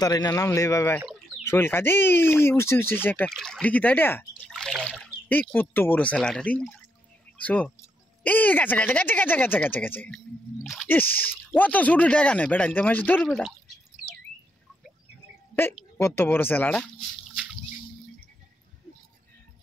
না, নামলে বাবা শৈল কাজ উঠছে উঠছে একটা দেখি তাই এই কত বড় সেলাটা রে। সো এই গেছে গেছে গেছে গেছে গেছে গেছে গেছে ইস অত ছোট টাকা নেই বেটা নিতে মাছ ধর বেটা এই কত বড় সেলাটা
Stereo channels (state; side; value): normal; both; correlation 0.79